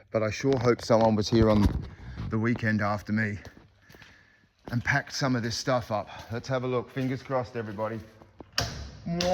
but I sure hope someone was here on the weekend after me and packed some of this stuff up. Let's have a look. Fingers crossed, everybody.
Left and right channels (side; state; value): both; identical; correlation 1.00